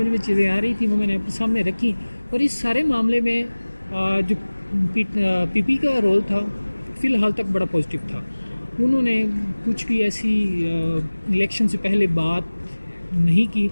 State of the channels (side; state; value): both; inverted; correlation -1.00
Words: میں چیزیں آ رہی تھیں وہ میں نے اپنے سامنے رکھی، اور اس سارے معاملے میں جو پی پی کا رول تھا فی الحال تک بڑا پازیٹیو تھا۔ انہوں نے کچھ بھی ایسی الیکشن سے پہلے بات نہیں کی